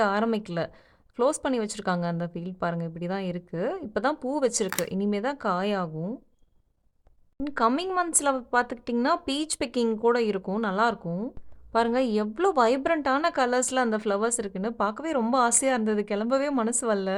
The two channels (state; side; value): identical; both; correlation 1.00